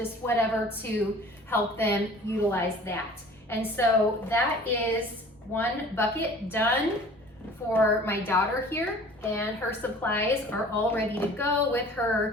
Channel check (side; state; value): both; normal; correlation 0.47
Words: whatever to help them utilize that. And so that is one bucket done for my daughter here, and her supplies are all ready to go with